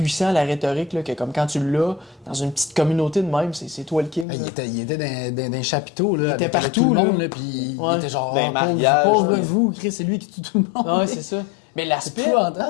la rhétorique, là, que, comme, quand tu l'as, dans une petite communauté de même, c'est toi le king. Il était dans un chapiteau, là, il était partout, tout le monde, là, puis il était genre, pauvre vous, Chris, c'est lui qui tue tout le monde. Ouais, c'est ça. Mais l'aspect...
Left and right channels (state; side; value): drops out; right; at 4.2 s